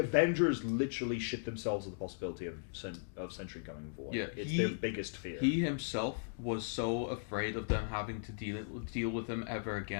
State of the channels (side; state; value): right; silent; digital silence